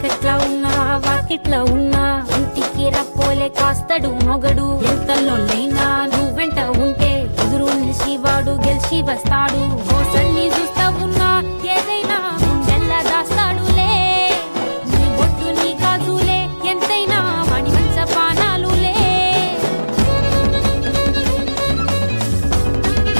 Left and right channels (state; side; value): inverted; both; correlation -1.00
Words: ఉన్నా వాకిట్లా ఉన్నా ఇంటికి రప్పోలే కాస్తడు మొగడు ఎంతలోనైనా నువ్వెంట ఉంటే ఎదురు నిలిచి వాడు గెలిచి వస్తాడు మోసల్ని చూస్తా ఉన్నా ఏదైనా గుండెల్లా దాస్తాడులే నీ బొట్టు నీ గాజులే ఎంతైనా వాడి మంచ పానాలులే